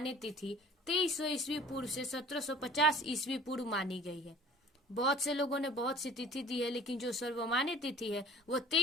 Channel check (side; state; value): both; normal; correlation 0.48